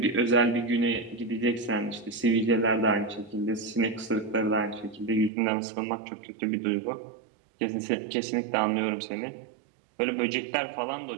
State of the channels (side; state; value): left; drops out; at 5.3 s